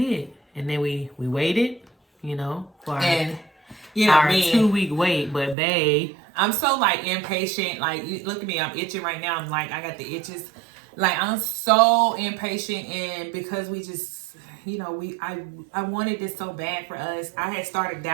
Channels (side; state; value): left; drops out; at 5.6 s